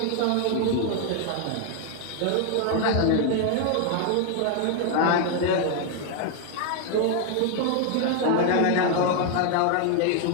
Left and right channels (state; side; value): different; both; correlation 0.00